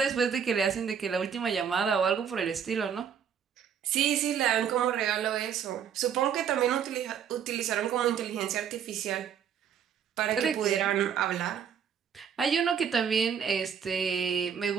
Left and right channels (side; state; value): left; quieter; 7.9 dB